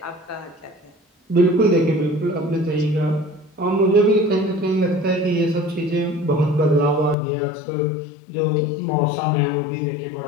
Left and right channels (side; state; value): right; drops out; at 7.2 s